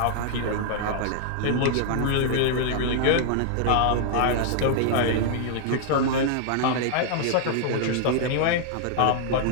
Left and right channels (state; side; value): different; both; correlation -0.01